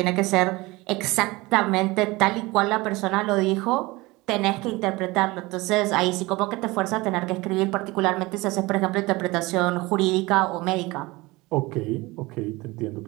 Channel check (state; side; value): quieter; left; 22.0 dB